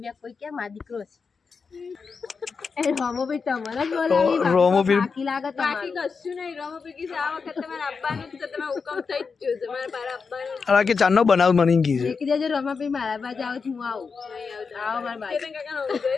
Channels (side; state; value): right; quieter; 5.2 dB